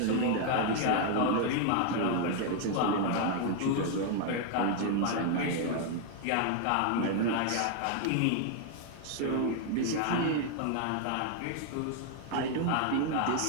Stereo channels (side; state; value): both; different; correlation 0.00